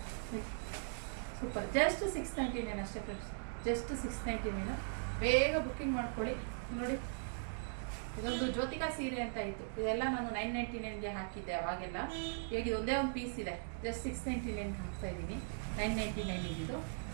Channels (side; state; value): left; silent; digital silence